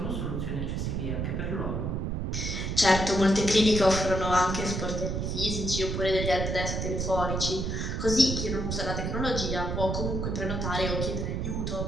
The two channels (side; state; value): right; noise; rumble, 1 dB below the sound